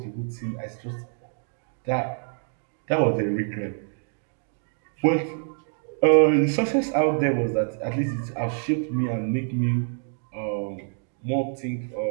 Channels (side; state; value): left; silent; 61 dB below the other